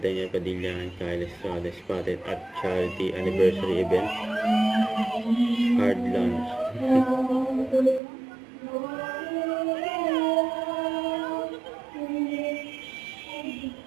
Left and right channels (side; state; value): left; drops out; at 8.0 s